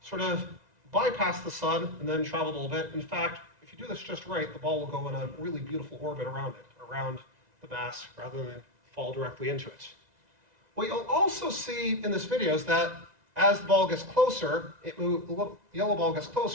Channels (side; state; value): left; late; 1.9 ms